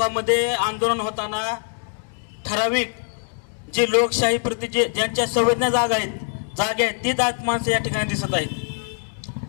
आंदोलन होताना ठराविक जे लोकशाही प्रति ज्यांच्या संवेदना जागा आहेत ती जात माणसं या ठिकाणी दिसत आहेत।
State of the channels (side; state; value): right; silent; digital silence